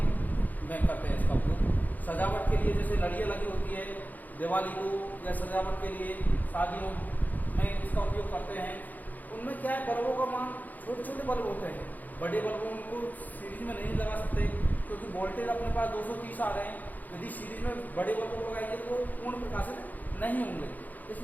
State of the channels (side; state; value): right; late; 0.082 ms